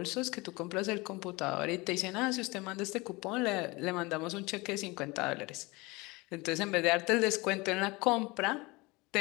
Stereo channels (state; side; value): quieter; right; 23.9 dB